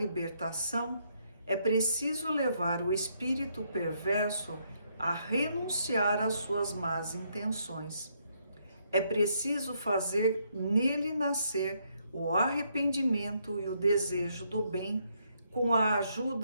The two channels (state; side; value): inverted; both; correlation -0.74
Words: é preciso levar o espírito perverso a renunciar às suas más intenções. É preciso fazer nele nascer o arrependimento e o desejo do bem, com a